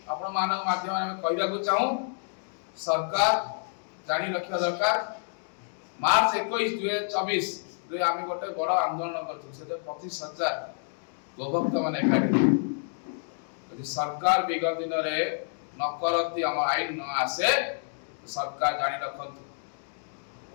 आपण मानव माध्यम में कहबा को चाहू सरकार जानी रखिया दरकार मार्च 21 2024 रे आमे गोटे बड़ आंदोलन करथु से 25,000 गोभक्त माने एकाठी यदि सरकार विगत दिन रे न करती हम आईन न आसे तो सरकार जानी रखंतु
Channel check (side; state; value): right; silent; digital silence